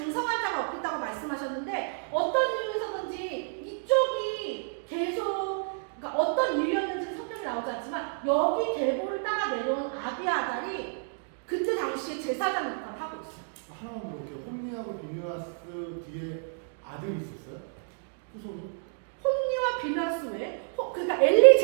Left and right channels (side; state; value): left; silent; digital silence